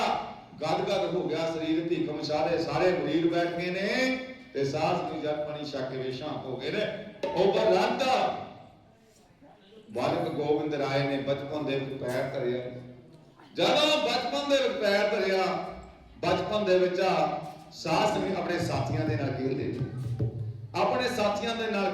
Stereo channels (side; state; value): both; identical; correlation 1.00